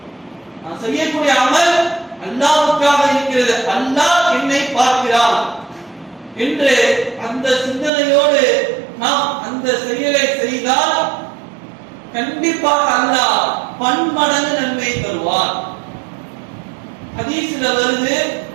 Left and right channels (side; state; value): left; drops out; at 7.9 s